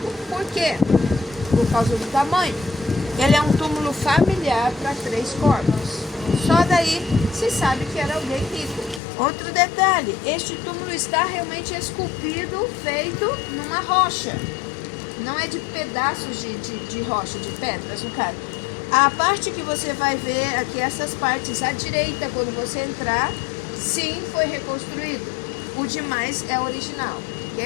Por quê? Por causa do tamanho. Ele é um túmulo familiar para 3 corpos. Só daí se sabe que era alguém rico. Outro detalhe, este túmulo está realmente esculpido, feito numa rocha. Não é de pedaços de rocha, de pedras, no caso. A parte que você vai ver aqui, essas partes à direita, quando você entrar, sim, foi reconstruído. O demais é original,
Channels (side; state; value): right; drops out; at 9.0 s